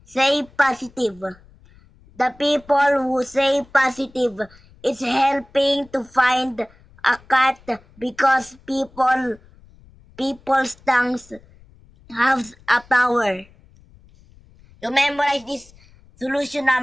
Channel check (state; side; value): noise; left; rumble, 27 dB below the sound